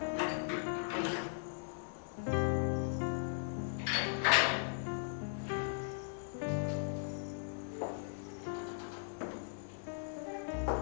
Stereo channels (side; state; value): right; silent; digital silence